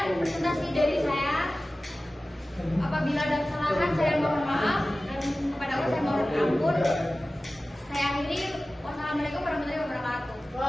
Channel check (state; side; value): normal; both; correlation 0.96